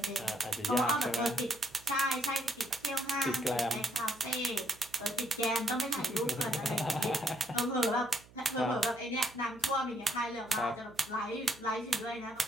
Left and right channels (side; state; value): right; noise; hum, 24 dB below the sound